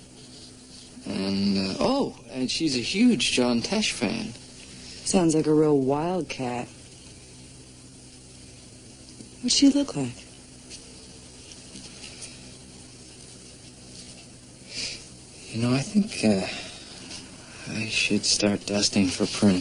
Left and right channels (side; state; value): both; identical; correlation 1.00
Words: And, and she's a huge John Tesh fan. Sounds like a real wildcat. What's she look like? You know, I think, I should start dusting for